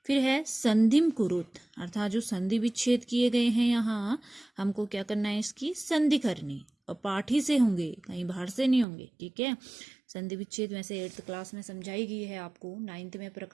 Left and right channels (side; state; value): left; drops out; at 8.8 s